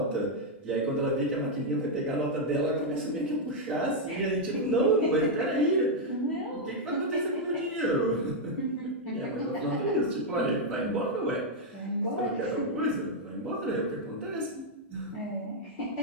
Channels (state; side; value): normal; both; correlation -0.02